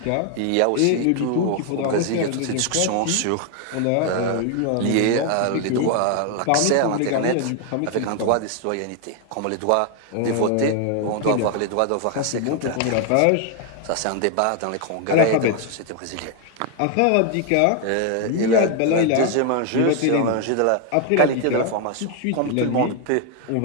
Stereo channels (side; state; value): both; different; correlation 0.01